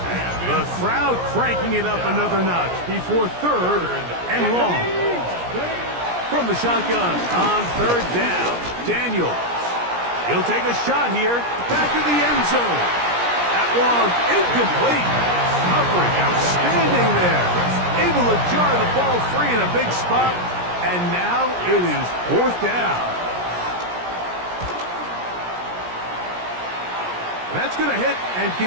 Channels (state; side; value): late; left; 17 ms